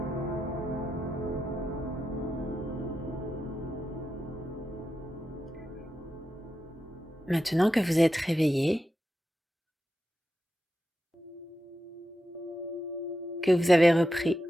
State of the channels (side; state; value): both; normal; correlation 0.88